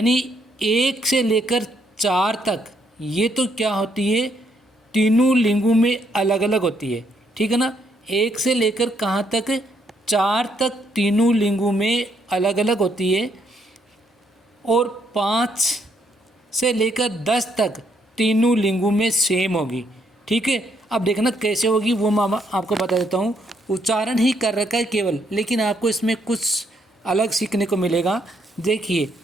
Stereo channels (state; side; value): normal; both; correlation 0.72